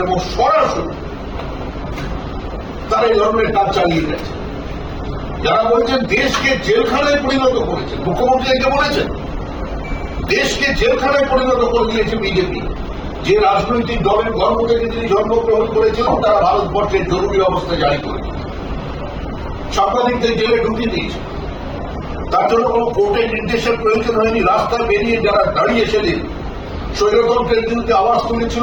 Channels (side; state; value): both; identical; correlation 1.00